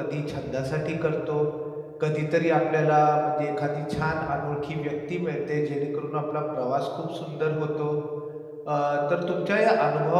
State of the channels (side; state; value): both; identical; correlation 1.00